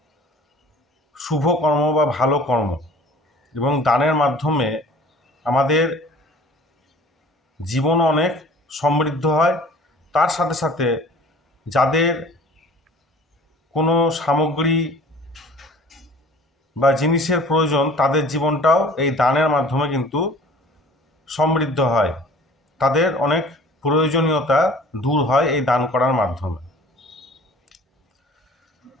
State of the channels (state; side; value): normal; both; correlation 0.48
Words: শুভ কর্ম বা ভালো কর্ম, এবং দানের মাধ্যমে আমাদের জীবন অনেক সমৃদ্ধ হয়। তার সাথে সাথে যাদের কোনো সামগ্রী বা জিনিসের প্রয়োজন, তাদের জীবনটাও এই দানের মাধ্যমে কিন্তু সমৃদ্ধ হয়। তাদের অনেক প্রয়োজনীয়তা দূর হয় এই দান করার মাধ্যমে।